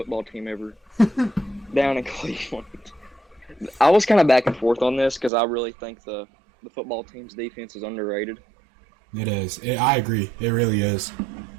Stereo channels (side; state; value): left; drops out; at 5.3 s